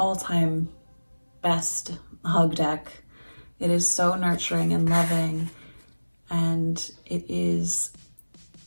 best hug deck. It is so nurturing and loving, and it's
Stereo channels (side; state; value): both; inverted; correlation -1.00